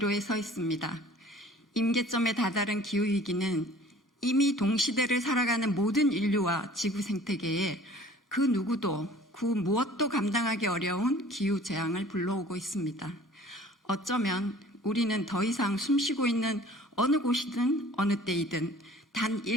서 있습니다. 임계점에 다다른 기후위기는 이미 동시대를 살아가는 모든 인류와 지구 생태계에 그 누구도 그 무엇도 감당하기 어려운 기후 재앙을 불러오고 있습니다. 어쩌면 우리는 더 이상 숨쉬고 있는 어느 곳이든 어느 때이든 단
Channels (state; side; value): normal; both; correlation 0.49